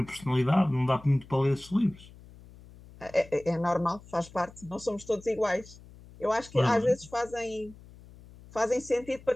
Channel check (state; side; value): noise; left; hum, 21 dB below the sound